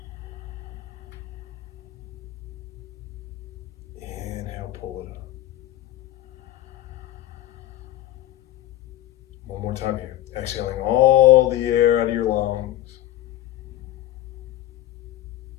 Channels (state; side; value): quieter; right; 13.9 dB